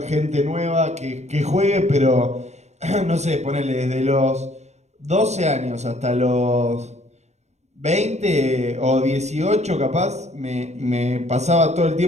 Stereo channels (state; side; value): late; left; 0.32 ms